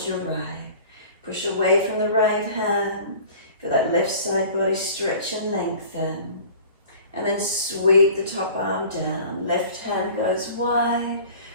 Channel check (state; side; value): inverted; both; correlation -0.45